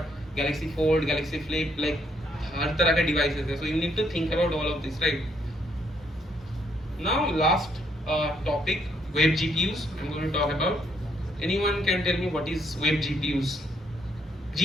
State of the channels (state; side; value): normal; both; correlation 0.71